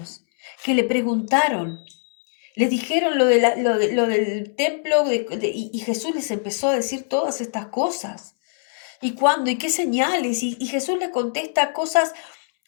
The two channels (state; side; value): silent; right; 64 dB below the other